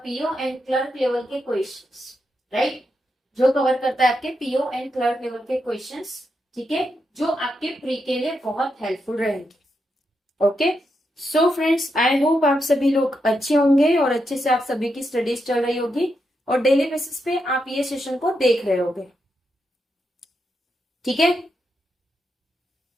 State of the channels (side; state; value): both; normal; correlation 0.84